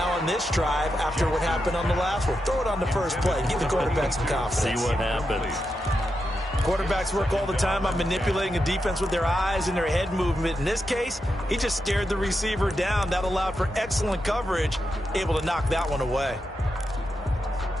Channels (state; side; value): normal; both; correlation 0.87